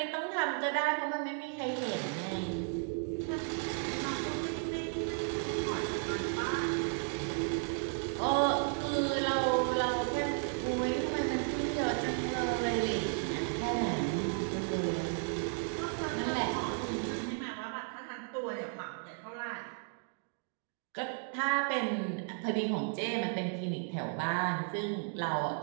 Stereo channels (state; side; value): silent; left; 55 dB below the other